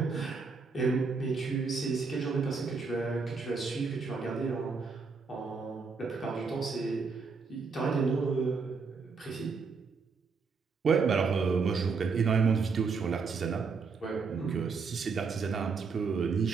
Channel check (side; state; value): left; quieter; 4.9 dB